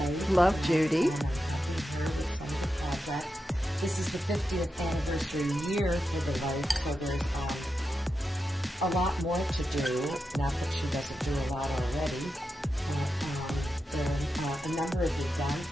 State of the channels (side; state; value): both; normal; correlation 0.89